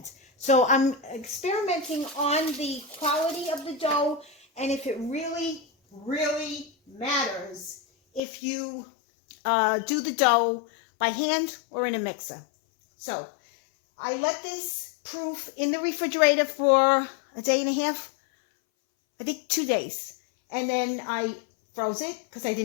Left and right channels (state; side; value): drops out; right; at 8.2 s